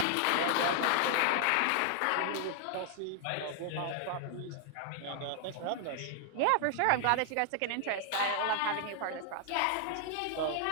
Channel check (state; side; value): different; both; correlation 0.00